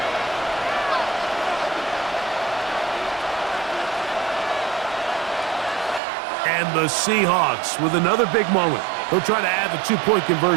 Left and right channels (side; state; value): left; drops out; at 6.0 s